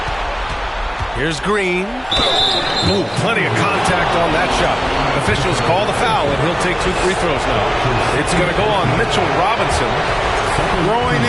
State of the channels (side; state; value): both; identical; correlation 1.00